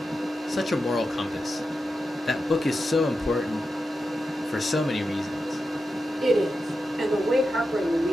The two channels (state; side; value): normal; both; correlation 0.90